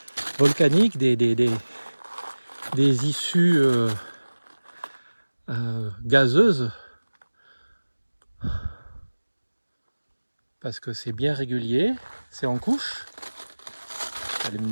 volcaniques, des issues gazeuses. Parce que c'est bien régulier, c'est en couche. Je vais aller me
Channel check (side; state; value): both; inverted; correlation -1.00